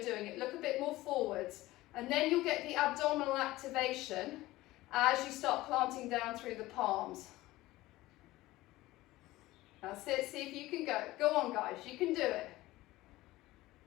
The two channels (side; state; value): right; quieter; 17.8 dB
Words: doing it. Look a bit more forwards. And then you'll get the abdominal activation as you start planting down through the palms. That's it. See if you can go. Go on, guys. You can do it.